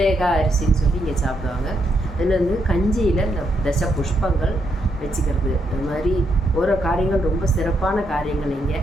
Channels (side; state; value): both; normal; correlation 0.78